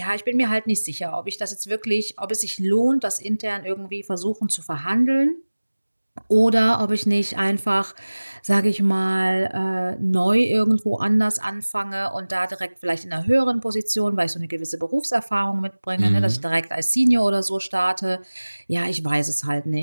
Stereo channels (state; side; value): inverted; both; correlation -1.00